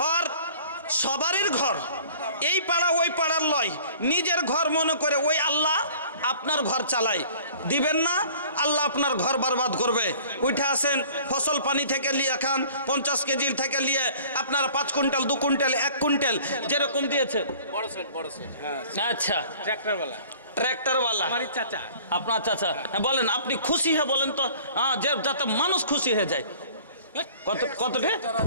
সবারই ঘর, এই পাড়া ওই পাড়ার লয়, নিজের ঘর মনে করে ওই আল্লাহ আপনার ঘর চালায়। দিবেন না, আল্লাহ আপনার ঘর বরবাদ করবে। উঠে আসেন, ফসল পানি থেকে নিয়ে খান, 50 কেজির থেকে নিয়ে আপনারা 5 কুইন্টাল, 2 কুইন্টাল, 1 কুইন্টাল যেরকম দিয়েছে। আচ্ছা, ট্র্যাক্টরওয়ালা আপনার চাচা। হ্যাঁ বলেন, আপনি খুশি হয়ে বলেন তো, যাতে মানুষ খুশি হয়ে যায়। কতটা?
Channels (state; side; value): inverted; both; correlation -0.49